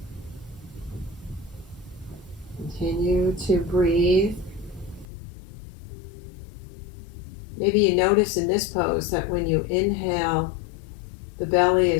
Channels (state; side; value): drops out; right; at 5.1 s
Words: Continue to breathe. Maybe you notice in this pose that when you inhale, the belly